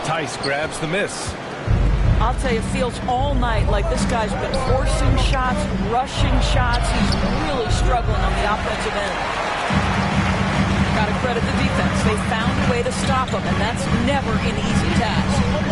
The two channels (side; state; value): both; identical; correlation 1.00